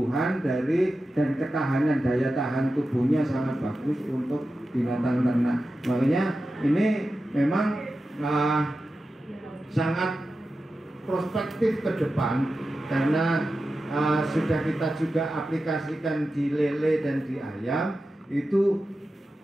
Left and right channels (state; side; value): normal; both; correlation 0.92